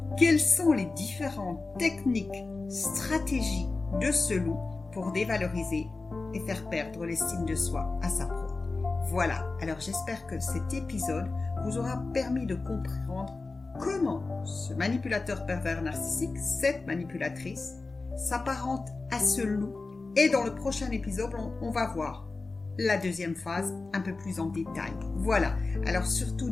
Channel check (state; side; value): quieter; right; 3.7 dB